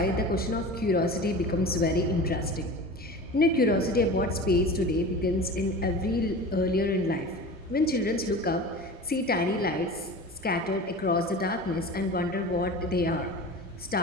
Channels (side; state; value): both; normal; correlation 0.35